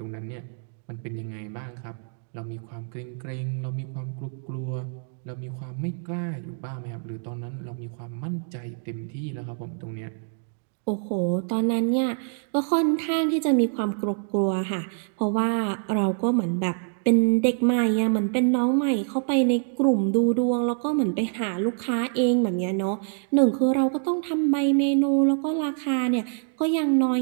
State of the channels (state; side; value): silent; left; 56 dB below the other